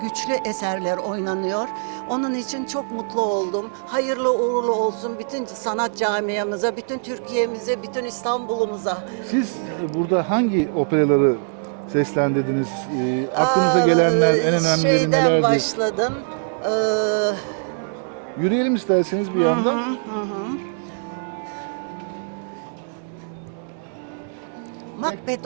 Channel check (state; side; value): silent; left; 64 dB below the other